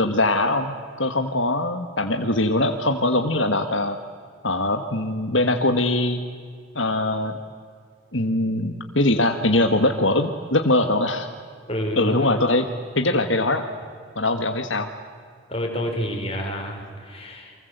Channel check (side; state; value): both; normal; correlation -0.02